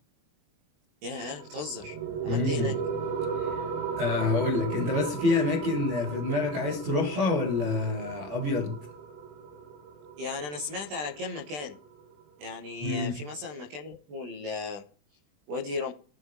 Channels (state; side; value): late; left; 20 ms